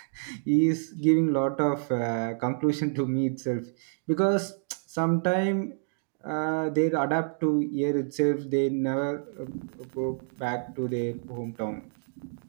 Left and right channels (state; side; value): silent; left; digital silence